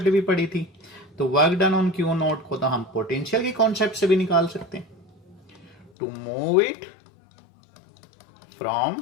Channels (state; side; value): drops out; right; at 5.9 s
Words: भी पढ़ी थी, तो work done on Q not को तो हम पोटेंशियल की कॉन्सेप्ट से भी निकाल सकते हैं। To move it from